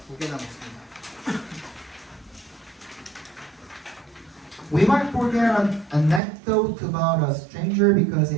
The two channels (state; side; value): drops out; left; at 6.2 s